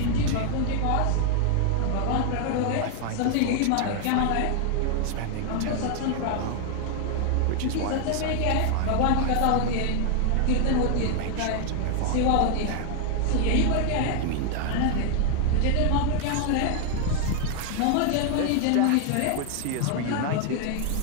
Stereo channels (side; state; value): both; different; correlation 0.00